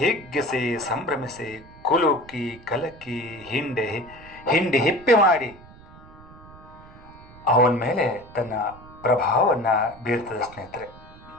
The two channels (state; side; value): noise; right; rumble, 21 dB below the sound